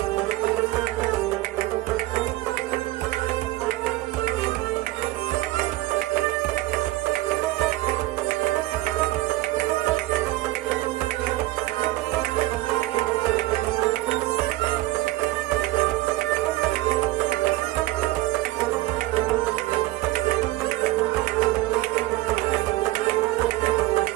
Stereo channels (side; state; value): left; quieter; 18.0 dB